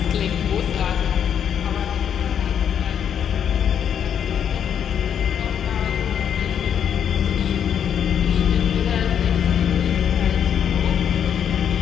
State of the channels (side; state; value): right; quieter; 8.6 dB